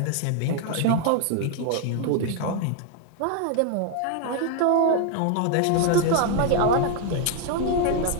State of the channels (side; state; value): both; different; correlation 0.00